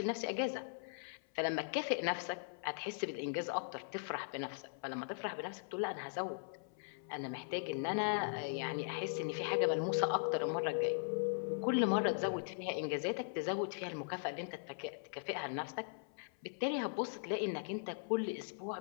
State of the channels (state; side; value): silent; right; 51 dB below the other